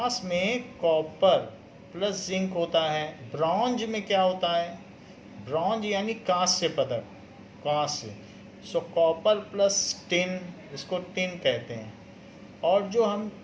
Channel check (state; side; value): identical; both; correlation 1.00